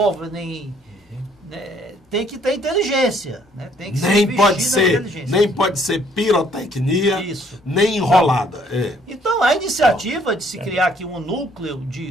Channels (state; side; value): normal; both; correlation 0.64